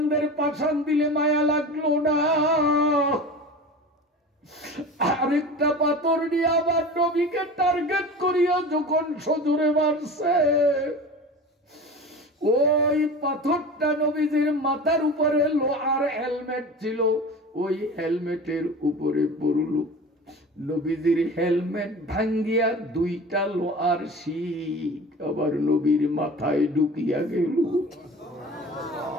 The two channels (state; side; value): normal; both; correlation 0.35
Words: পাশান দিলে মায়া লাগলো না। আরেকটা পাথর নিয়ে আবার নবীকে টার্গেট করিয়া যখন সজোরে মারছে, ওই পাথরটা নবীজির মাথার উপরে লোহার হেলমেট ছিল, ওই হেলমেটের উপরে পড়ল। নবীজির হেলমেট ভাঙ্গিয়া দুইটা লোহার শিক আবার নবীর মাথায় ঢুকিয়া গেল।